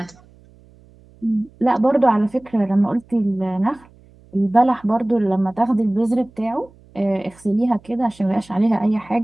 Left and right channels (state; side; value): noise; right; hum, 27 dB below the sound